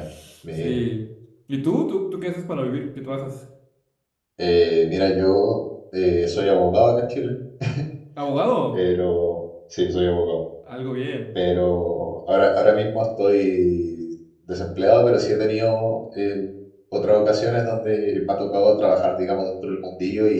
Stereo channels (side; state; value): both; identical; correlation 1.00